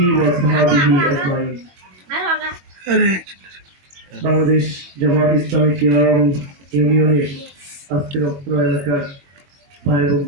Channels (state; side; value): late; left; 22 ms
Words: وصحبه أجمعين বাংলাদেশ জামাত ইসলামী কিরাম ইউনিয়নের আজকের অত্র এলাকার ভাই এবং